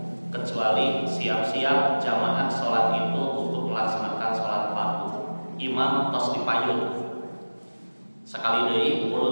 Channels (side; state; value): both; inverted; correlation -1.00